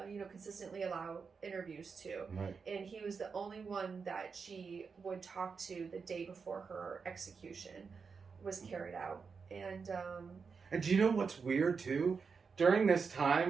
consistently allow interviews to. Right. And he was the only one that she would talk to the day before her execution was carried out. And do you know what's weird too? During this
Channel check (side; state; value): left; quieter; 5.4 dB